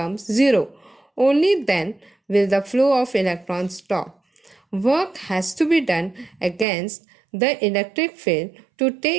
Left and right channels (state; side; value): drops out; left; at 6.7 s